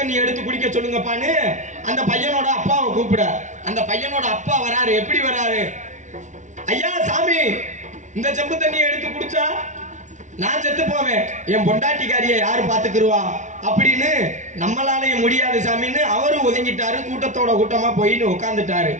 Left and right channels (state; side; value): late; left; 0.36 ms